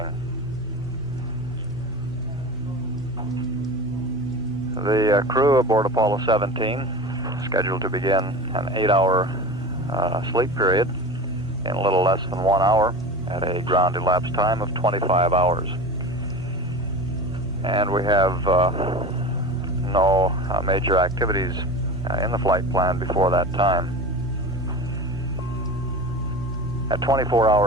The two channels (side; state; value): both; normal; correlation 0.32